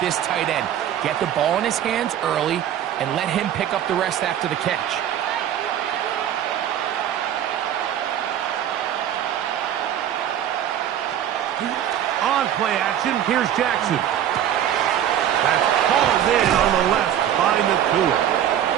tight end. Get the ball in his hands early and let him pick up the rest after the catch. On play action, here's Jackson. That's called in on the left by Nacua.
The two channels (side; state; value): left; quieter; 10.5 dB